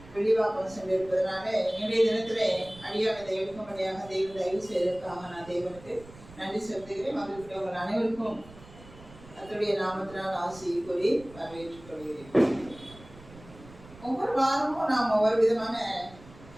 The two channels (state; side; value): noise; right; rumble, 20 dB below the sound